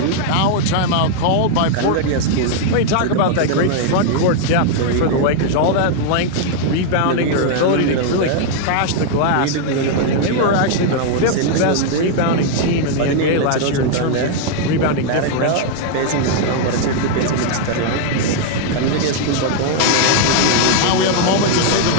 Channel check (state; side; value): different; both; correlation -0.01